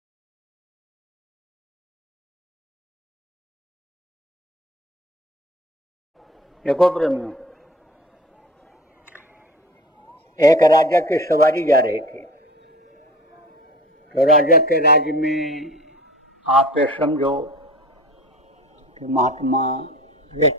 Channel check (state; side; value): normal; both; correlation 0.40